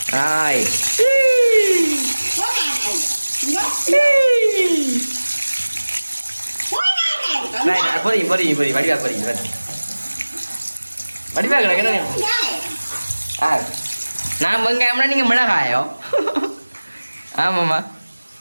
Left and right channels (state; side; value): inverted; both; correlation -1.00